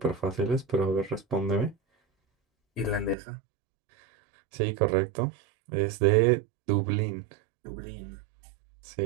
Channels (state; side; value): drops out; left; at 3.2 s